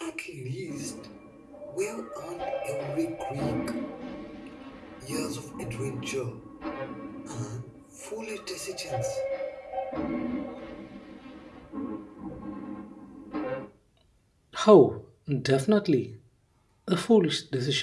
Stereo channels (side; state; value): both; identical; correlation 1.00